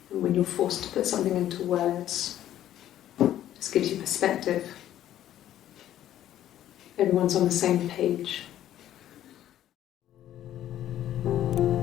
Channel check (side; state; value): right; quieter; 12.1 dB